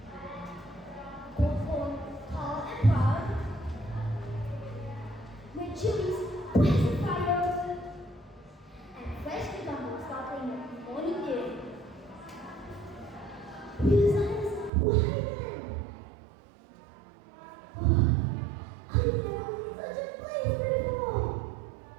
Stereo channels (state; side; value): drops out; left; at 14.7 s